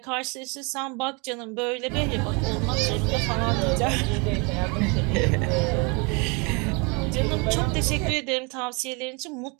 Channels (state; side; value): quieter; left; 31.0 dB